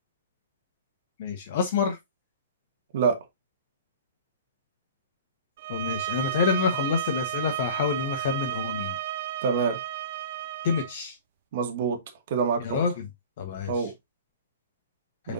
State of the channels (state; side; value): inverted; both; correlation -0.38